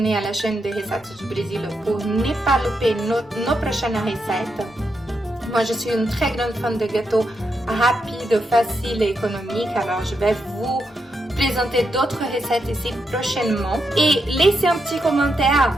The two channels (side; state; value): both; normal; correlation 0.83